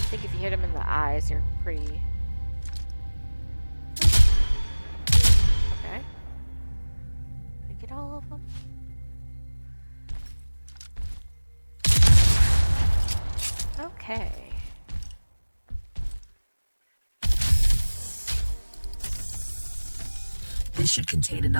think if you hit them in the eyes, you're pretty... Okay. Did I get all of them? Okay. This should contain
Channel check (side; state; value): both; inverted; correlation -1.00